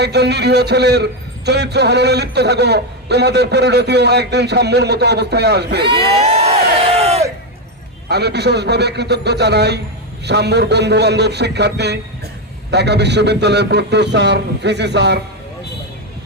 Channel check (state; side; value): normal; both; correlation 0.07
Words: একজন নিরীহ ছেলের চরিত্র হননে লিপ্ত থাকো, তোমাদের পরিণতিও একদিন সাম্যর মতো অবস্থায় আসবে। আমি বিশেষভাবে কৃতজ্ঞ জানাই সাম্যর বন্ধু বান্ধব, শিক্ষার্থী, ঢাকা বিশ্ববিদ্যালয়ের প্রক্টর স্যার, ভিসি স্যার।